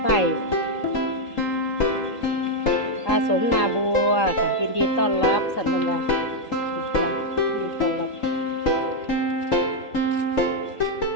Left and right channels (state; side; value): late; right; 3.8 ms